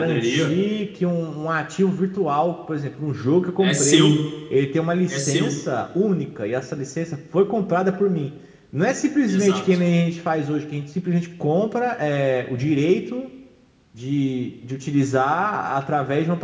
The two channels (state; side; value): identical; both; correlation 1.00